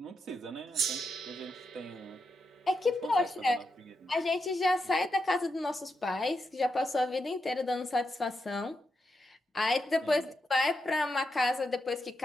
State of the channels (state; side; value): normal; both; correlation 0.85